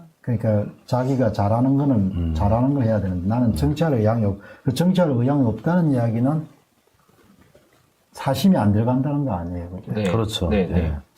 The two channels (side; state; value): both; identical; correlation 1.00